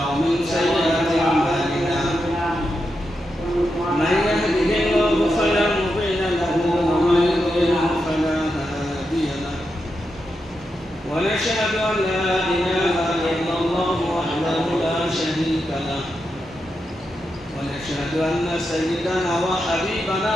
ومن سيئات اعمالنا من يهده الله فلا مضل له ومن يضلل فلا هادي له ونشهد ان لا اله الا الله وحده لا شريك له ونشهد أن سيدنا وحبيبنا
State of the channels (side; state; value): both; normal; correlation 0.86